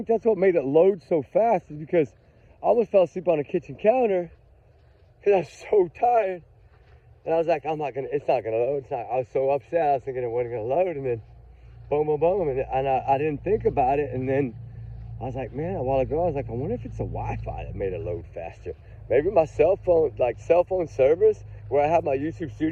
that's what made it load so fast, is because I almost fell asleep on the kitchen counter because I was so tired. And I was like, it's not gonna load. I was so upset. I was thinking it wasn't gonna load, and then boom, boom, boom. And I didn't think about it. And then I was like, man, a while ago, I was like, I wonder if it's the Wi-Fi that made it load faster. Maybe my cell phone service, where I have my YouTube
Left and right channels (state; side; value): identical; both; correlation 1.00